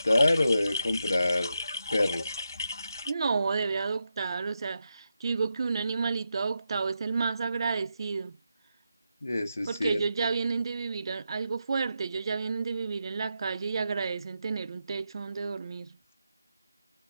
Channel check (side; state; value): both; inverted; correlation -0.87